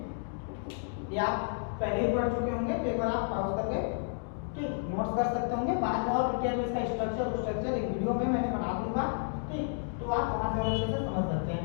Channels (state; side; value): silent; right; digital silence